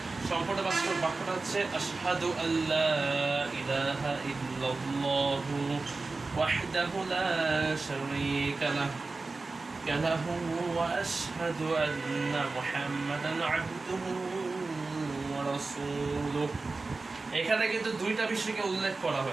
সম্পূর্ণ বাক্যটা হচ্ছে আশহাদু আল্লা ইলাহা ইল্লাল্লাহু ওয়াহদাহু লা শারীকা লাহু ওয়া আশহাদু আন্না মুহাম্মাদান আবদুহু ওয়া রাসূলুহু। এখানে কিন্তু দুইটা বিষয়কে উল্লেখ করা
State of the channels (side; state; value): left; quieter; 3.7 dB